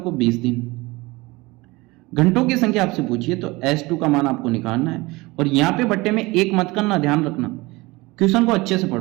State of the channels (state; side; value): quieter; left; 22.4 dB